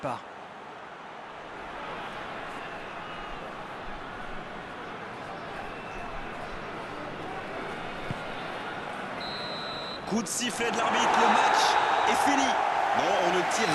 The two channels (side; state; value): both; identical; correlation 1.00